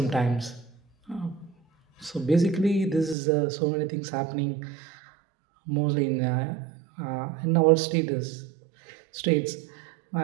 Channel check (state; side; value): drops out; left; at 3.2 s